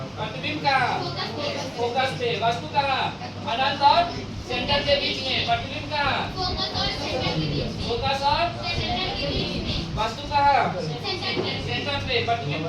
प्रतिबिंब का फोकस पे। वस्तु का अनंत और सेंटर के बीच में। प्रतिबिंब का फोकस और वस्तु का सेंटर पे। प्रतिबिंब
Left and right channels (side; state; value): both; identical; correlation 1.00